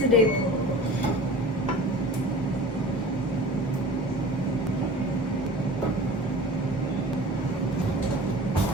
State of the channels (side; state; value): both; normal; correlation 0.39